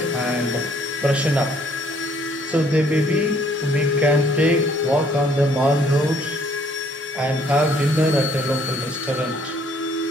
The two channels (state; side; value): normal; both; correlation 0.63